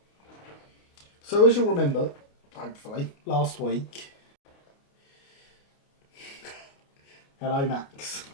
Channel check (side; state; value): right; late; 29 ms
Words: So as you'll remember, hopefully, last week... Hello Max.